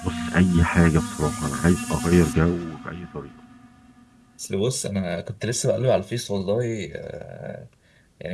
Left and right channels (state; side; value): identical; both; correlation 1.00